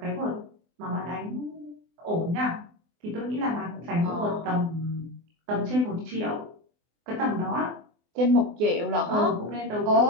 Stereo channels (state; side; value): late; left; 24 ms